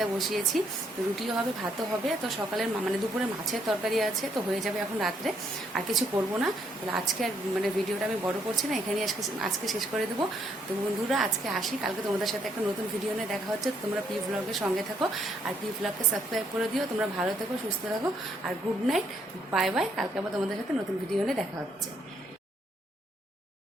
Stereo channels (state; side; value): normal; both; correlation 0.71